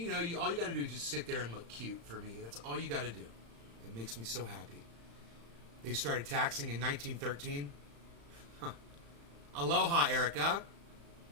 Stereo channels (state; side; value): late; left; 35 ms